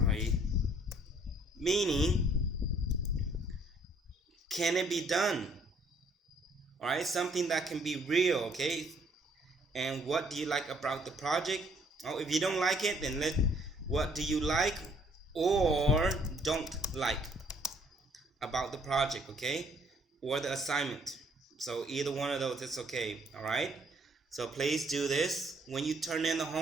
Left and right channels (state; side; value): normal; both; correlation 0.63